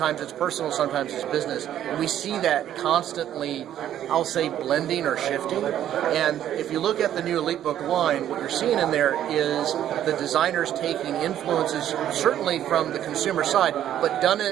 it's personal, sometimes it's business. And we see that constantly, I'll say, blending or shifting. And if you look at the new EliteBook line, what you're seeing in there is the designers taking influences certainly from the consumer side, but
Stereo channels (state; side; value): quieter; left; 11.2 dB